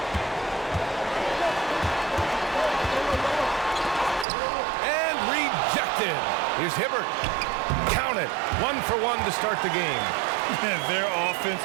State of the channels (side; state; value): left; drops out; at 4.2 s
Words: And rejected. Here's Hibbert. Count it. 1 for 1 to start the game. Their offense